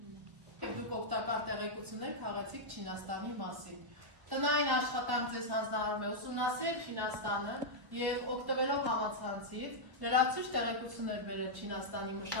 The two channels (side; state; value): left; late; 1.3 ms